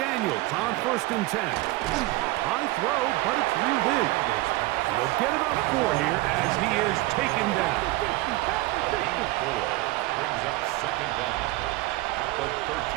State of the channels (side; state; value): left; quieter; 19.6 dB